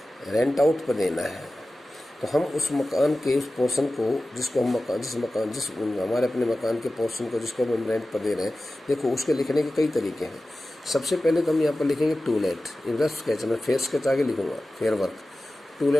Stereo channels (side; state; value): both; normal; correlation 0.95